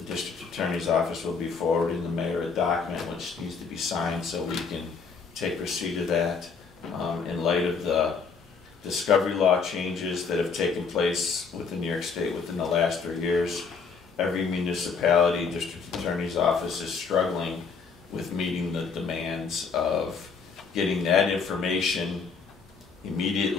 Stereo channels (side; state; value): right; quieter; 5.3 dB